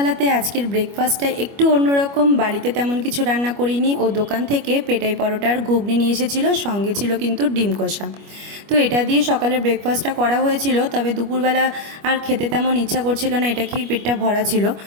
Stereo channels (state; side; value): late; left; 25 ms